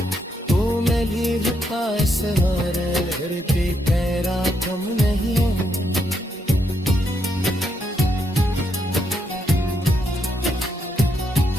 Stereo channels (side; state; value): both; normal; correlation 0.78